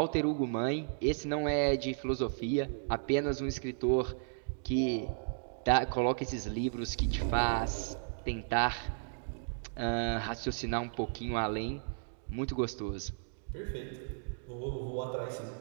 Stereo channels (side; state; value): left; silent; digital silence